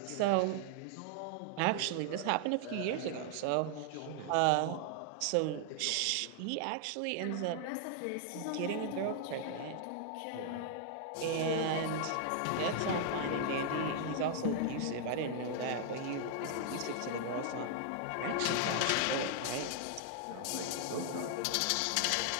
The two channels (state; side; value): different; both; correlation 0.00